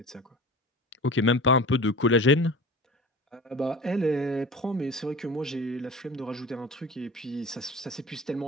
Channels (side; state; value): both; normal; correlation 0.36